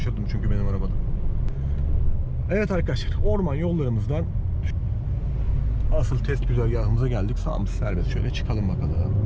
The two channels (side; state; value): both; identical; correlation 1.00